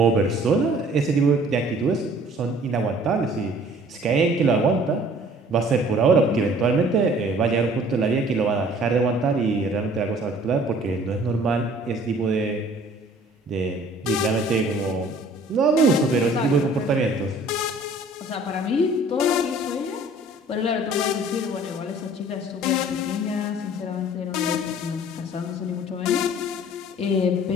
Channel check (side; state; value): both; normal; correlation 0.53